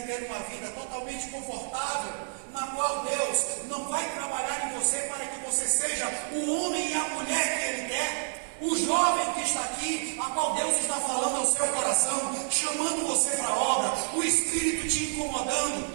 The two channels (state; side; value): silent; left; digital silence